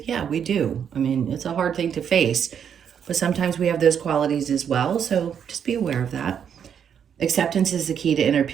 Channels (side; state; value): left; quieter; 8.1 dB